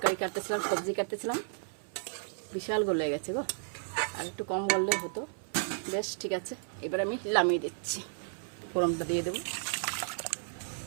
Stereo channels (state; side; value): silent; left; 56 dB below the other